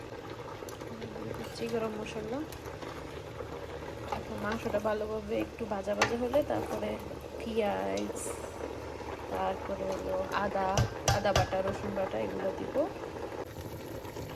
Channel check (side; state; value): both; identical; correlation 1.00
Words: দিচ্ছি গরম মশলা। এখন মাংসটা ভালোভাবে একটু ভাজা ভাজা হলে তারপরে পেঁয়াজ, তারপরে হলো আদা বাটা, রসুন বাটা এগুলো দিব।